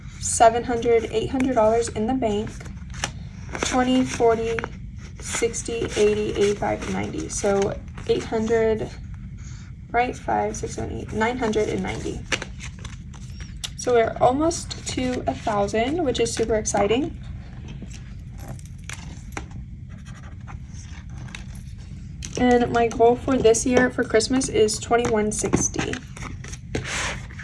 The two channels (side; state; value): both; identical; correlation 1.00